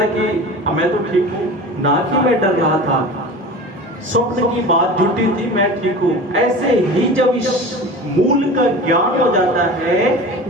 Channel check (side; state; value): both; normal; correlation 0.35